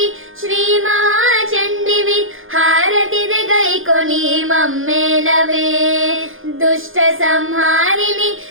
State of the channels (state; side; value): late; left; 0.59 ms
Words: శ్రీ మహాచండివి హారతిదే గైకొని మమ్మేలవే. దుష్ట సంహారిణి